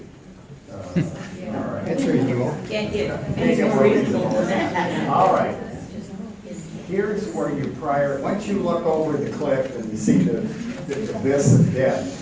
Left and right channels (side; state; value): both; identical; correlation 1.00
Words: All right. It's reasonable. Can't get All right. Here's where once you look over the cliff and you see the abyss of death,